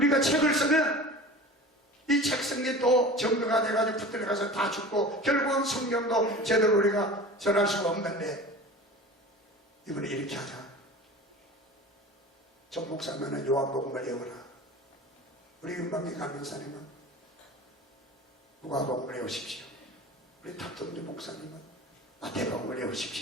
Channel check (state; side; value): normal; both; correlation 0.37